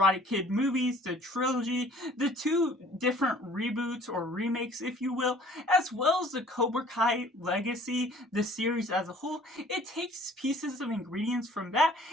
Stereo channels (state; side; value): normal; both; correlation 0.53